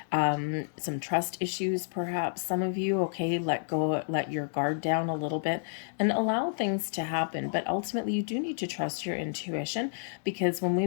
some trust issues, perhaps some of you, okay, let go, let your guard down a little bit and allow things to happen. But ultimately, you do need to trust your intuition, because when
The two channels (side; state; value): right; silent; digital silence